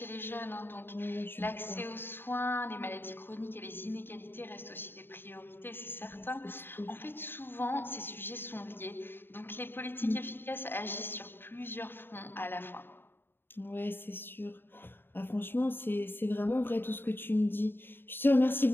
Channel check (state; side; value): late; right; 0.10 ms